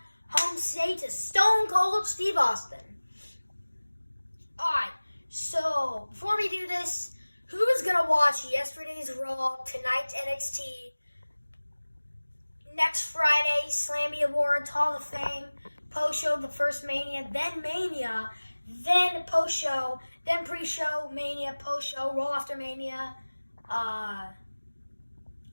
home state to Stone Cold Steve Austin. Alright, so before we do this, who is going to watch yesterday's Raw, tonight's NXT, next Friday, Slammy Awards, Hall of Fame, post-show, the first Mania, then post-show, then pre-show, Mania, post-show, Raw after Mania, NXT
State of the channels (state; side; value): inverted; both; correlation -1.00